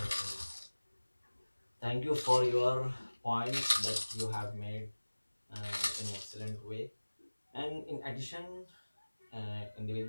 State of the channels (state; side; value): inverted; both; correlation -1.00